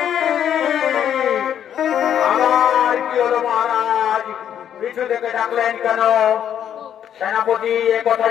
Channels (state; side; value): quieter; right; 9.6 dB